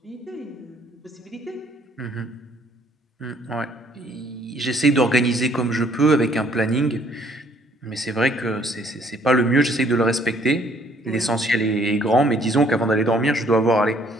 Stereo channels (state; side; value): normal; both; correlation 0.63